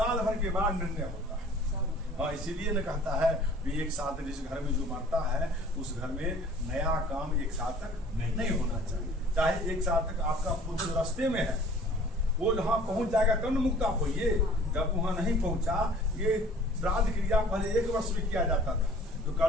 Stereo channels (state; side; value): normal; both; correlation 0.50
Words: भर के बाद निर्णय होता है। हाँ, इसीलिए न कहता है कि 1 साल तक जिस घर में जो मरता है उस घर में नया काम 1 साल तक नहीं होना चाहिए। चाहे 1 साल तक आपका पुत्र रास्ते में है, वो जहाँ पहुंच जाएगा तब मुक्त आप होइए। जब वहाँ नहीं पहुंचा, ये श्राद्ध क्रिया पहले 1 वर्ष में किया जाता था। तो